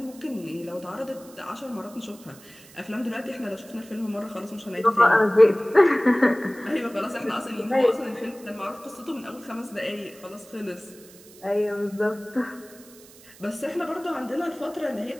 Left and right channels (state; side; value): noise; right; hiss, 22 dB below the sound